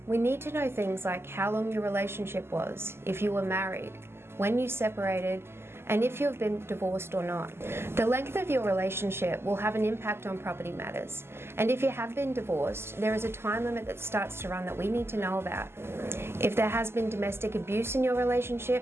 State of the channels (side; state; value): left; late; 0.12 ms